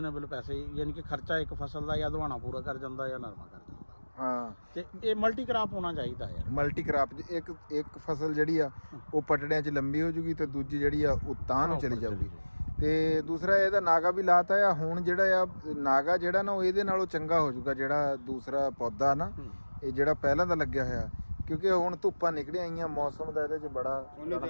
ਪੈਸੇ, ਯਾਨੀ ਕਿ ਖਰਚਾ ਇੱਕ ਫਸਲ ਦਾ ਜਾਂ ਦੁਆਣਾ ਪੂਰਾ ਕਰ ਜਾਂਦਾ ਜਾਂ ਨਰਮਾ ਕਰ ਜਾਂਦਾ। ਹਾਂ, ਤੇ ਇਹ ਮਲਟੀ ਕ੍ਰਾਪ ਹੋਣਾ ਚਾਹੀਦਾ ਯਾਰ। ਮਲਟੀ ਕ੍ਰਾਪ ਇੱਕ ਫਸਲ ਜਿਹੜੀ ਆ ਉਹ ਪਟੜਿਆਂ 'ਚ ਲੰਬੀ ਹੋ ਜੂਗੀ ਤੇ ਦੂਜੀ ਜਿਹੜੀ ਆ ਉਹ ਤਾਂ ਨੂੰ ਚਲੀ ਜਾਊਗੀ। ਤੇ ਦੂਸਰਾ ਇਹਦਾ ਨਾਗਾ ਵੀ ਲਾਤਾ ਆ ਹੁਣ। ਜਿਹੜਾ ਆ ਨਾਗਾ ਜਿਹੜਾ ਨਾ ਉਹ ਇਹਦੇ ਨਾਲੋਂ ਚੰਗਾ ਹੋ ਜਾਊਗਾ ਜਿਹੜਾ ਦੂਸਰਾ ਪੌਦਾ ਨਾ, ਇਹ ਜਿਹੜਾ ਪਹਿਲਾਂ ਦਾ ਲੱਗਿਆ ਹੋਇਆ, ਕਿਉਂਕਿ ਹੁਣ ਧੁੱਪਾਂ ਨਿਕਲੀਆਂ ਆਈਆਂ, ਮੌਸਮ ਦਾ ਇਹਦੇ 'ਚ ਬੜਾ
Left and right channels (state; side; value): inverted; both; correlation -1.00